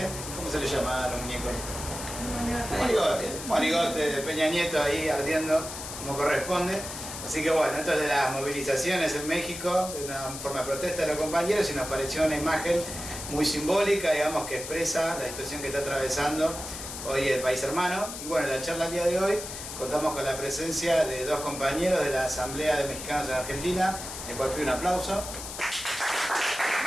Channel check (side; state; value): left; noise; hiss, 9 dB below the sound